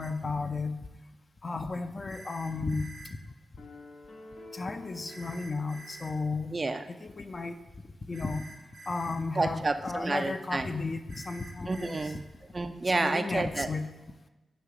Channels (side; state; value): both; normal; correlation 0.91